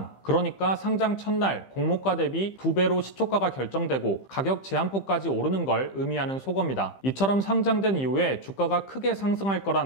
그러니까 상장 첫날 공모가 대비 2배로 시초가가 결정되고 가격 제한폭까지 오르는 걸 의미하는 속어입니다. 이처럼 상장된 이후에 주가가 크게 상승할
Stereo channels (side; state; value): right; late; 15 ms